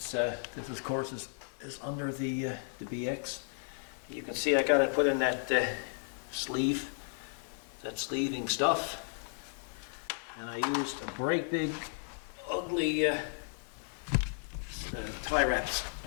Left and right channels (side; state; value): right; silent; 55 dB below the other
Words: this of course is under the BX. You can see I got to put in that sleeve, that sleeving stuff, and I used a great big ugly tie wraps,